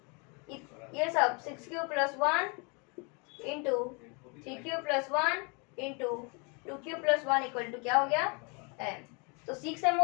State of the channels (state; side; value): quieter; right; 33.0 dB